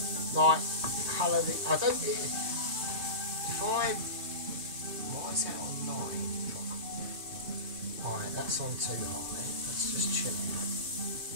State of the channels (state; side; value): late; left; 3.2 ms